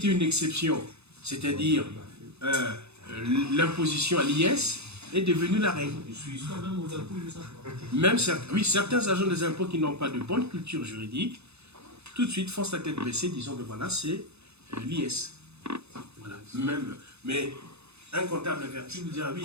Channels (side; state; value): left; late; 0.80 ms